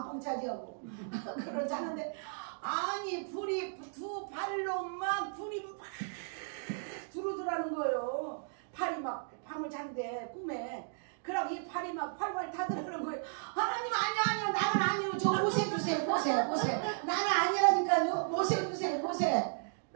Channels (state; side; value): silent; left; digital silence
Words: 차지하고 그러지 않은데 아니 불이 두 발로 막 불이 막 들어오더라는 거예요. 팔이 막 밤을 자는데 꿈에 그럼 이 팔이 막 활활 타들어오는 거예요. 하나님 아니요 나는 아니요 저 모세 주세요 모세 나는 아니라니까요 모세 주세요 모세